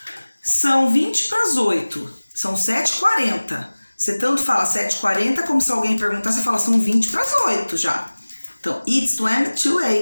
São 20 para as 8. São 7h40. Você tanto fala 7h40 como se alguém perguntar, você fala são 20 para as 8 já. Então, it's 20 to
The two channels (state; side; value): inverted; both; correlation -1.00